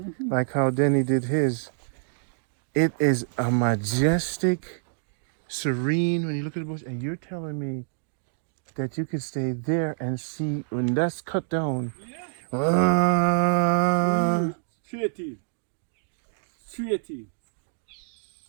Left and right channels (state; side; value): silent; left; digital silence